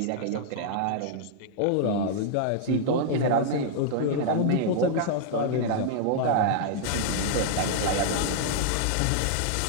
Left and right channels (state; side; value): different; both; correlation -0.01